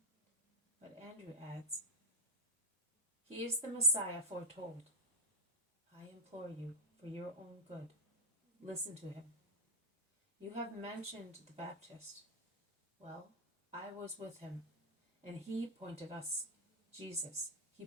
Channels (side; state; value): both; normal; correlation -0.06